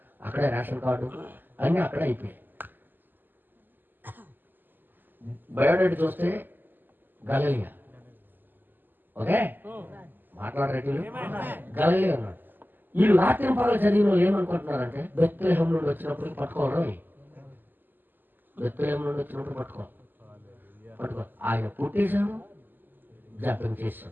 అక్కడే రేషన్ కార్డు అన్నీ అక్కడే అయిపోయాయి. బయోడేట్ చూస్తే గలీలియా. ఓకే, మాట్లాడరేటి గలీలియా అన్నాడు. వీళ్ళు రాత్రి పగలు చదివిన వాళ్ళు ఏమనుకుంటున్నారంటే బెత్లెహేం నుండి వచ్చినప్పుడు పట్టుకోవాలి. బెత్లెహేం నుండి వచ్చినప్పుడు పట్టుకో. ఆయన పుట్టేశాడు, జపం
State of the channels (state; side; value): late; left; 0.090 ms